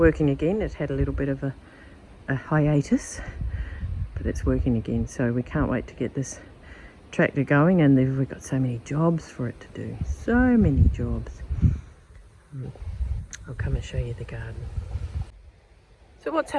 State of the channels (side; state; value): both; identical; correlation 1.00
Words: again. It had a little bit of a hiatus, but it's working again. So we can't wait to get this tractor going, and we've got so many jobs for it to do. So many jobs. I'll come and show you the garden. So what's